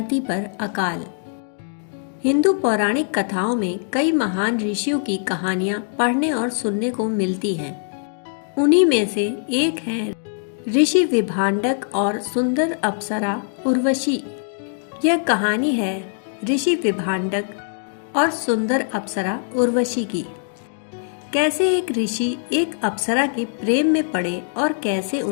पर अकाल। हिंदू पौराणिक कथाओं में कई महान ऋषियों की कहानियां पढ़ने और सुनने को मिलती हैं। उन्हीं में से एक है ऋषि विभांडक और सुंदर अप्सरा उर्वशी। यह कहानी है ऋषि विभांडक और सुंदर अप्सरा उर्वशी की। कैसे एक ऋषि एक अप्सरा के प्रेम में पड़े और कैसे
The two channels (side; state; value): right; silent; digital silence